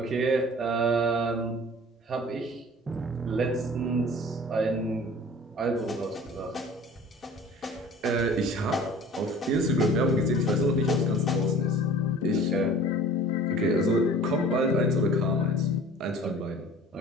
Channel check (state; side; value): normal; both; correlation 0.45